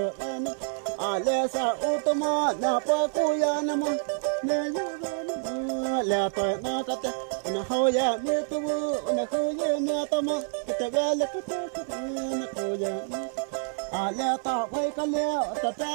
an a le sa u to ma na pa ku ya na ma ne yo le pa na ka te na ho ya me tu na ho ya me ta ma te ga le ku tu na ho ya a le ta wai ka le ta ta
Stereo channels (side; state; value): left; silent; 60 dB below the other